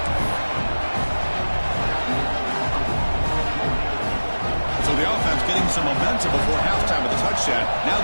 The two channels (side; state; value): both; inverted; correlation -1.00